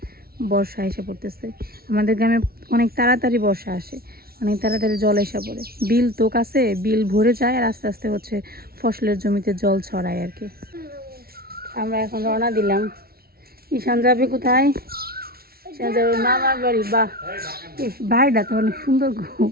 বর্ষা এসে পড়তেছে। আমাদের গ্রামে অনেক তাড়াতাড়ি বর্ষা আসে, অনেক তাড়াতাড়ি জল এসে পড়ে, বিল তো কাছে, বিল ভরে যায় আর আস্তে আস্তে হচ্ছে ফসলের জমিতে জল ছড়ায় আর কি। আমরা এখন রওনা দিলাম। ঈশান যাবে কোথায়? ঈশান যাবে মামার বাড়ি। বাহ, বাড়িটা তো অনেক সুন্দর গো,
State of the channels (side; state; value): left; late; 0.44 ms